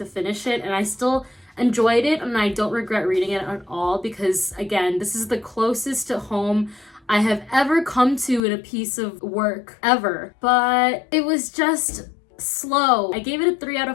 finish it, and I still enjoyed it, and I don't regret reading it at all, because, again, this is the closest to home I have ever come to in a piece of work, ever. But it was just... slow. I gave it a 3 out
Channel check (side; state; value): right; drops out; at 8.4 s